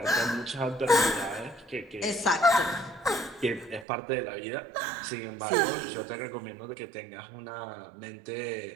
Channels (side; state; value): left; drops out; at 3.9 s